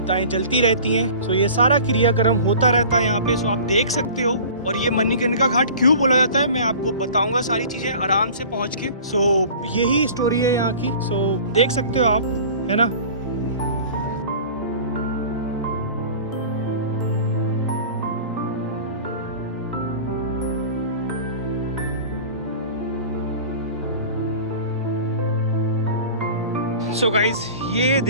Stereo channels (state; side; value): inverted; both; correlation -0.41